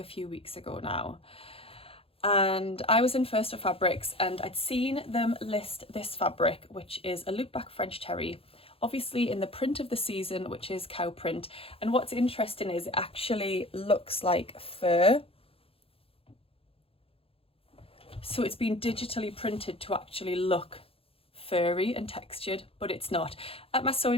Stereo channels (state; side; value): late; right; 0.27 ms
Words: few weeks ago now. And I was in First for Fabrics, and I'd seen them list this fabric, which is a loopback French terry, obviously in the print of the season, which is cow print. And what's interesting is it actually looks like fur. So it's been digitally printed to actually look furry and textured, but it's not. At my